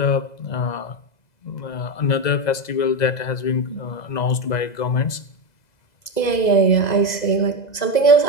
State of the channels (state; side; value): late; right; 2.0 ms